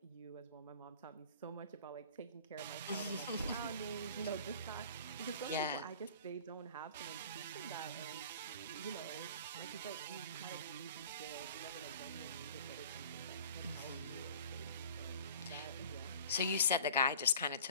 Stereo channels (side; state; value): both; inverted; correlation -0.46